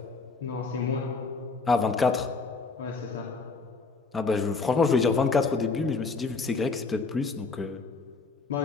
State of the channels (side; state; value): right; quieter; 4.2 dB